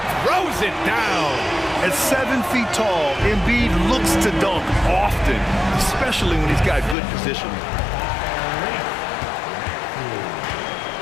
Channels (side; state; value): right; drops out; at 7.0 s